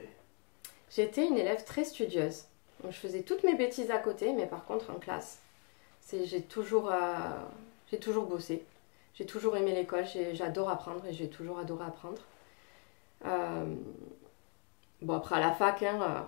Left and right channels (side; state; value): right; quieter; 35.5 dB